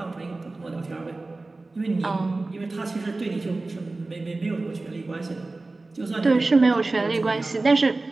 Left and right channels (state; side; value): quieter; left; 3.3 dB